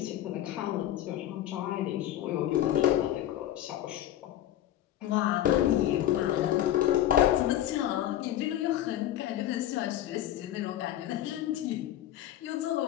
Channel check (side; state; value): right; quieter; 12.7 dB